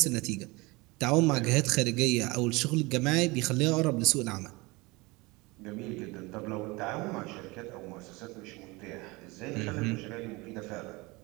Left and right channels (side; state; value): left; quieter; 24.2 dB